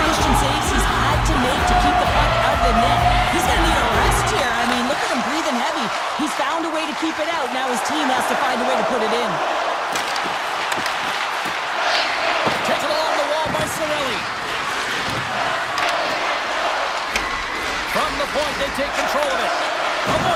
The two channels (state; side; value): identical; both; correlation 1.00